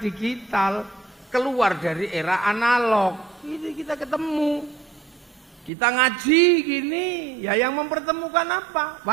keluar dari era analog. Ini kita ketemu. Kita ngaji gini, ya yang mempertemukan apa?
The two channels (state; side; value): drops out; left; at 5.7 s